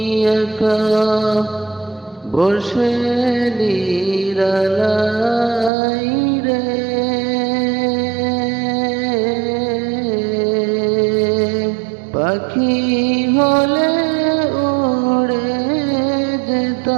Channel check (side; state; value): left; drops out; at 5.7 s